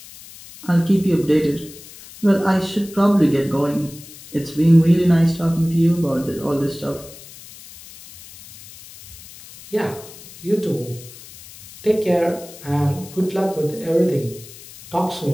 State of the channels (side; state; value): left; noise; hiss, 18 dB below the sound